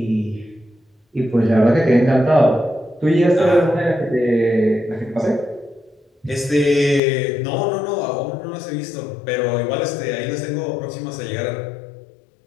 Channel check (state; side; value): drops out; right; at 7.0 s